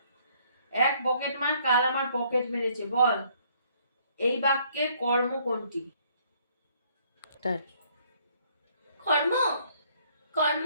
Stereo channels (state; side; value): inverted; both; correlation -0.64